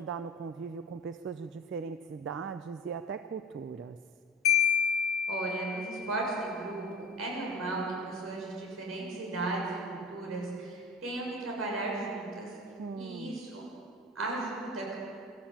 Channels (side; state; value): both; normal; correlation 0.35